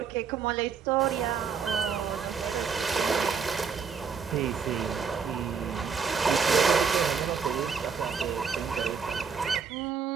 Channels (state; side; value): quieter; left; 6.1 dB